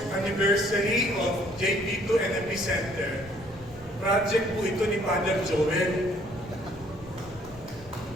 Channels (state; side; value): noise; left; rumble, 20 dB below the sound